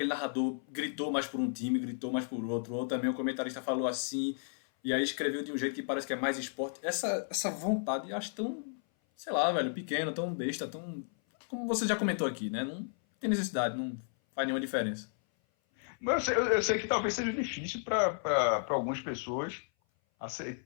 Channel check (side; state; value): right; silent; 56 dB below the other